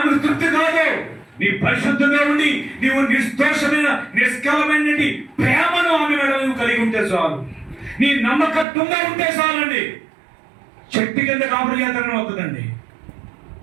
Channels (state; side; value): drops out; left; at 8.7 s